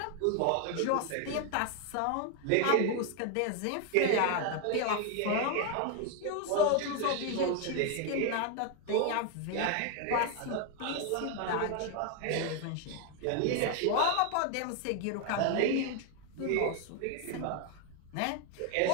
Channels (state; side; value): different; both; correlation 0.01